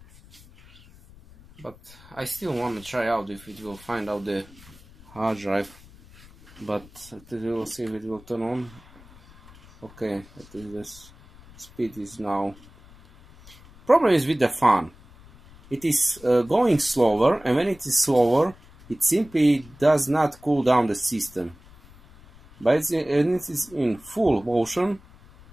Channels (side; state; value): left; noise; rumble, 23 dB below the sound